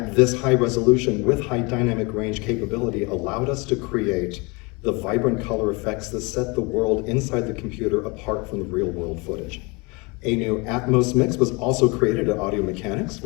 this high resolution with high dynamic range capability allowed us to create the vibrant color effects that set the world inside the computer apart from the real world footage. A new Atmos mix was also created at Audio Mechanics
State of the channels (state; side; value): quieter; right; 27.9 dB